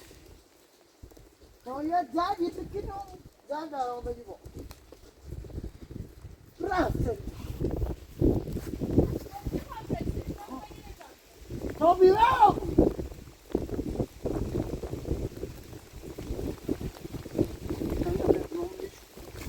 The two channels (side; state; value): both; identical; correlation 1.00